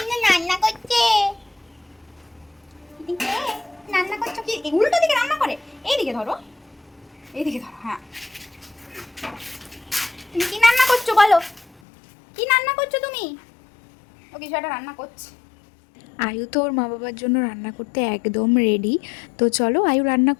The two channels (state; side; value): drops out; right; at 11.8 s